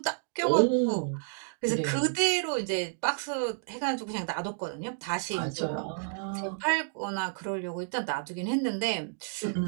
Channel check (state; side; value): silent; left; digital silence